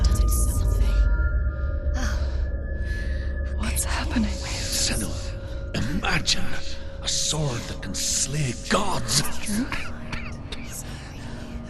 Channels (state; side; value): identical; both; correlation 1.00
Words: Senua, imagine a sword that can slay gods.